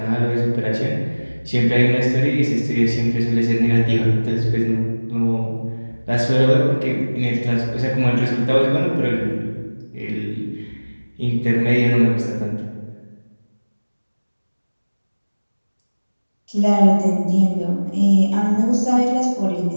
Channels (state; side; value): inverted; both; correlation -1.00